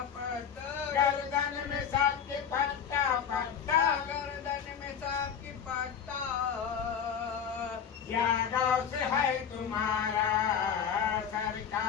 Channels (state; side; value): quieter; right; 7.6 dB